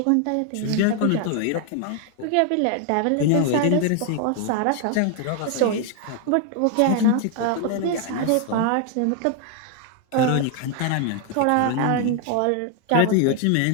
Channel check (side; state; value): both; different; correlation 0.00